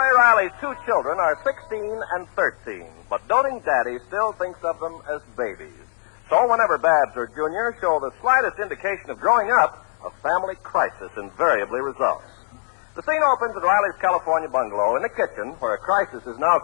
Riley's two children are 16 and 13, but doting daddy still thinks of them as babies. So whenever Babs or Junior show the slightest indication of growing up, a family crisis invariably results. The scene opens at Riley's California bungalow in the kitchen, where a crisis is now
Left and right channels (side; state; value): right; silent; 64 dB below the other